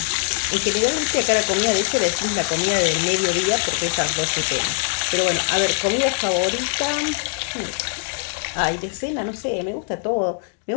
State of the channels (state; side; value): silent; right; 64 dB below the other